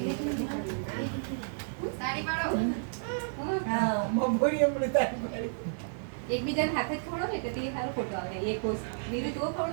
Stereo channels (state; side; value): silent; left; digital silence